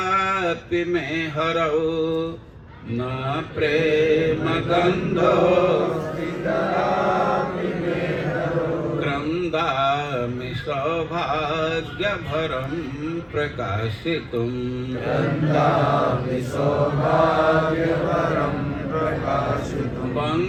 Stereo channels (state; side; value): identical; both; correlation 1.00